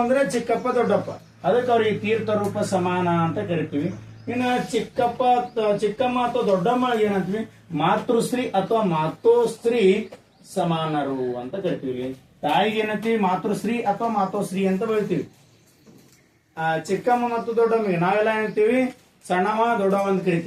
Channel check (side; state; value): both; identical; correlation 1.00